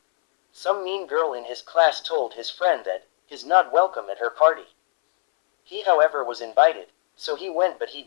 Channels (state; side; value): silent; right; 64 dB below the other